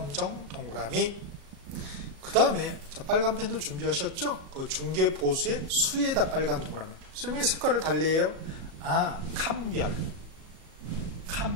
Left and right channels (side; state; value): left; late; 37 ms